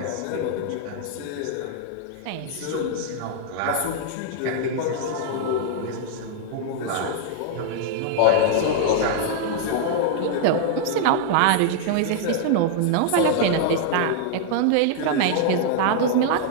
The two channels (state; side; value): different; both; correlation -0.01